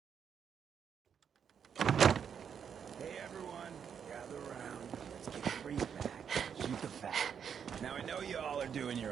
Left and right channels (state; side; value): quieter; left; 7.5 dB